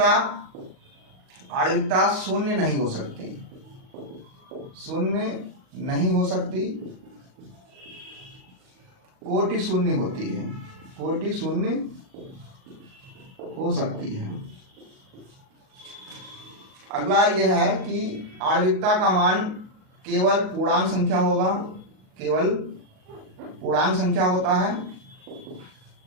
आणविकता शून्य नहीं हो सकती, शून्य नहीं हो सकती, कोटि शून्य होती है, कोटि शून्य हो सकती है। अगला यह है कि आणविकता का मान केवल पूर्णांक संख्या होगा, केवल पूर्णांक संख्या होता है,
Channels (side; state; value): left; late; 38 ms